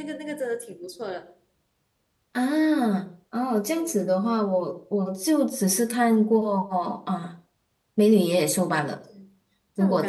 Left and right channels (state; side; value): identical; both; correlation 1.00